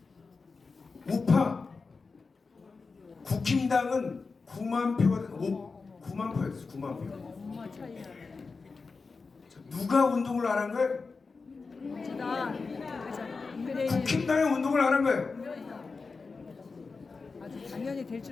우파 국힘당은 9만 표 얻었어요. 9만 표였어요. 9만 표. 누가 운동을 안 한 거예요? 국힘당이 운동을 안 한 거예요. 당연히 될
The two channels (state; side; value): quieter; right; 4.4 dB